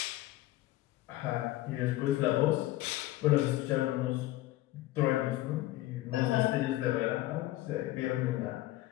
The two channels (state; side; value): quieter; right; 16.5 dB